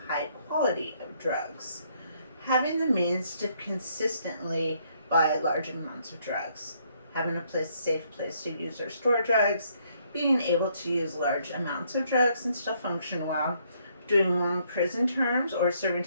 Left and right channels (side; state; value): both; inverted; correlation -0.70